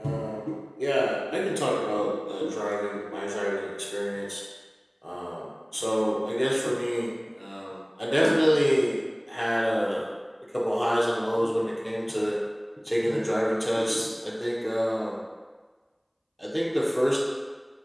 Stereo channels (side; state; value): both; identical; correlation 1.00